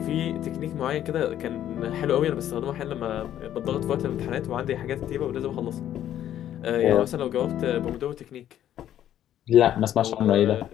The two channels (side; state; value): right; quieter; 11.3 dB